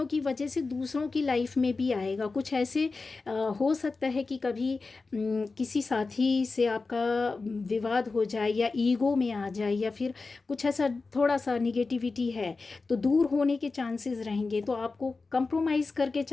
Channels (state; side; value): quieter; right; 4.0 dB